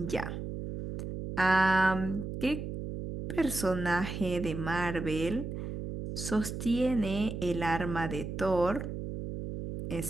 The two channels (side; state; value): right; noise; hum, 6 dB below the sound